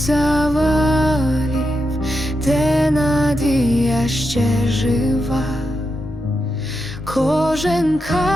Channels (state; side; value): normal; both; correlation 0.86